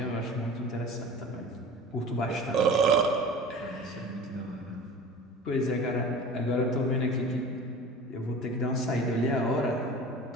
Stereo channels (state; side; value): normal; both; correlation 0.38